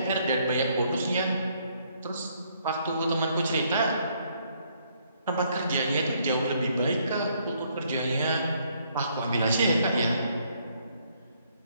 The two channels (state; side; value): inverted; both; correlation -0.69